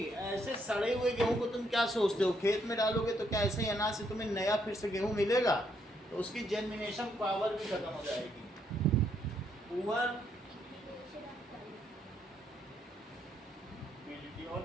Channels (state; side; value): normal; both; correlation 0.74